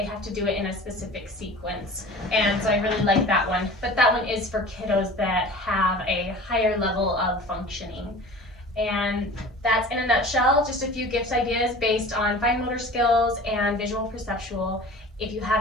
have to do it in a specific sequence. And so I really like that one. But that one is for kiddos that have a higher level of functioning. And that's, in a nutshell, just a few gift ideas based on fine motor skills and visual perceptual. If you have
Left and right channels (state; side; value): normal; both; correlation 0.41